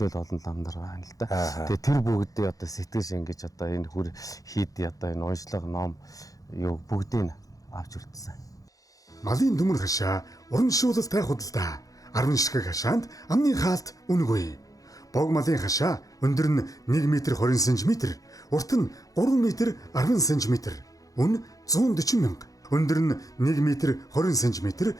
олон лам нар байна л да. Тэгээ тэр бүгдээ одоо сэтгэл шингэж одоо энэ хүр хийдий одоо энэ уншлага ном юу бүгдийг авч үлдсэн. Малын дүмэр хашаа уран шуулалтай худалдаа 10 ширхэг хашаанд амны хаалт үнэгүй. Бог малын хашаа өндөр нь 1 м 20 см, урт нь 3 м 10 см, үн 140 мянга. Өндөр нь 1 м 20 см,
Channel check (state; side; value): late; right; 0.17 ms